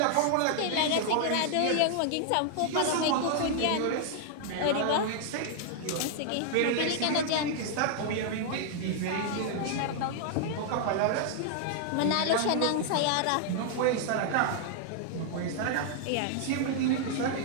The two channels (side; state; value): both; different; correlation -0.01